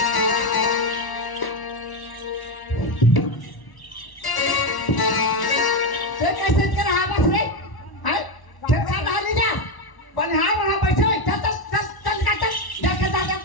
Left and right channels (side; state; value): right; late; 1.1 ms